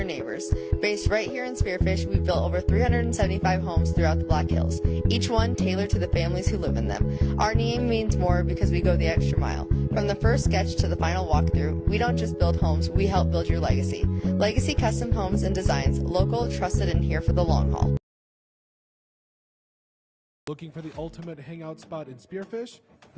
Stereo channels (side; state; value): both; identical; correlation 1.00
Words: neighbors. Based right here in Spearfish, we've built over 375 homes throughout the Black Hills, each one tailored to the families who live in them. Our name means more because we go the extra mile. From the first sketch to the final walkthrough, we don't just build homes, we help build your legacy. Legacy Custom Homes and Designs, local, trusted, and here for the long haul. Looking for the ultimate hangout spot in Spearfish?